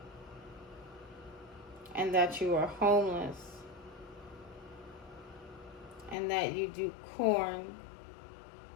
And that you are homeless. And that you do corn.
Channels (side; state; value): right; drops out; at 6.2 s